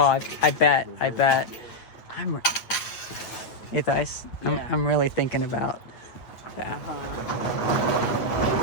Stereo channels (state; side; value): late; right; 8.7 ms